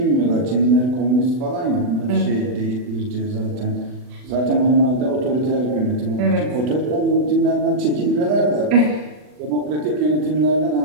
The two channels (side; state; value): left; late; 40 ms